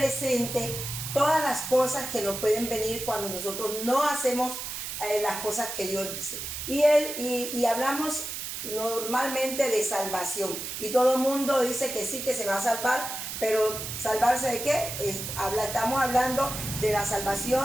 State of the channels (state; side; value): noise; right; hiss, 6 dB below the sound